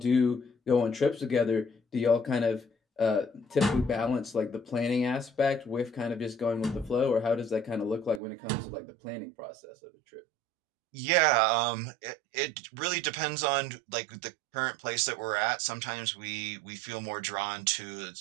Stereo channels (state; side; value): drops out; left; at 8.2 s